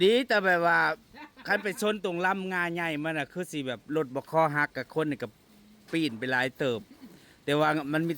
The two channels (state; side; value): identical; both; correlation 1.00